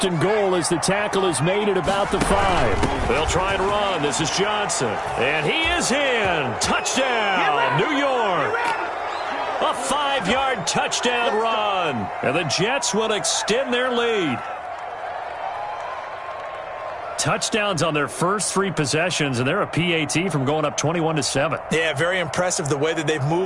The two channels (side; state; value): both; identical; correlation 1.00